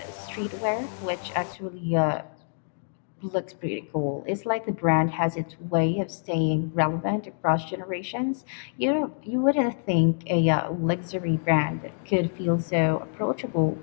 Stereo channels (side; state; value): right; silent; digital silence